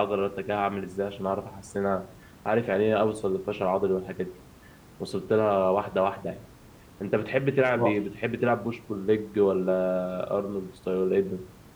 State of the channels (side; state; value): both; identical; correlation 1.00